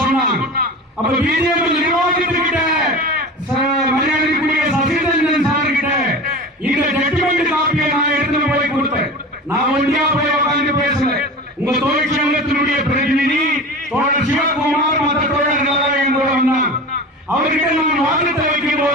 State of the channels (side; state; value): both; normal; correlation 0.32